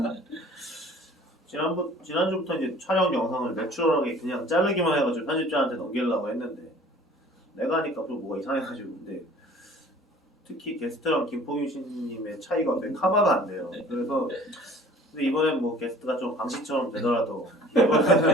지난주부터 이제 촬영 영상을 내추럴하게 그냥 자르기만 해가지고 편집자한테 넘기려고 했는데 내가 하니까 또 뭐가 이상해가지고 근데 특히 게스트랑 김포균 씨님의 차이가 어떻게 커버가 안 돼요. 그래서 근데 이번엔 뭐 게스트가 좀 방식처럼 되더라도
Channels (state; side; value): normal; both; correlation 0.50